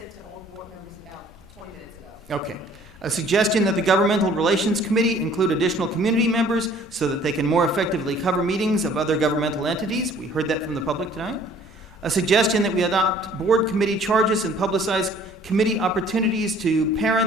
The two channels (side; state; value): both; normal; correlation 0.55